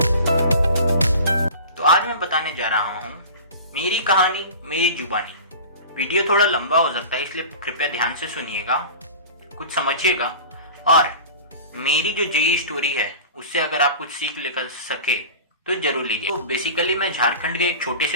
तो आज मैं बताने जा रहा हूँ मेरी कहानी मेरी जुबानी। वीडियो थोड़ा लंबा हो सकता है, इसलिए कृपया ध्यान से सुनिएगा, कुछ समझिएगा और मेरी जो जेई स्टोरी है उससे अगर आप कुछ सीख लेकर सके तो जरूर लीजिए। तो बेसिकली मैं झारखंड के एक छोटे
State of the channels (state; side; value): inverted; both; correlation -0.37